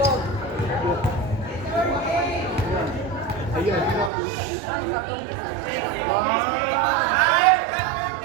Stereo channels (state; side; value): drops out; left; at 4.1 s